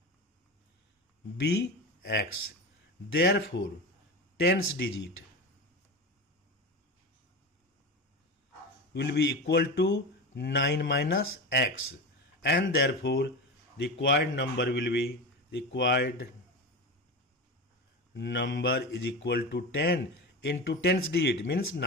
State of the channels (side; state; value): both; normal; correlation 0.24